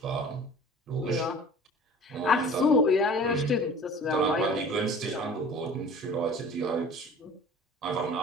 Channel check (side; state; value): both; normal; correlation 0.44